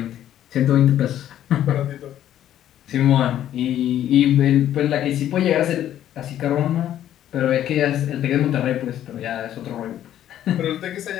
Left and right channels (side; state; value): right; quieter; 11.5 dB